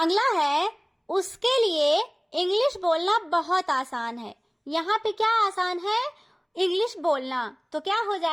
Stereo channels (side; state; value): both; identical; correlation 1.00